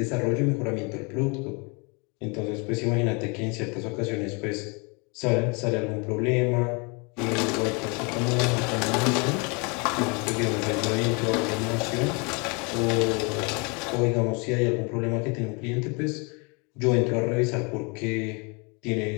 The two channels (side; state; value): right; quieter; 31.7 dB